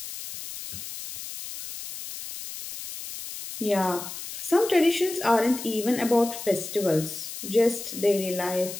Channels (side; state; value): left; noise; hiss, 10 dB below the sound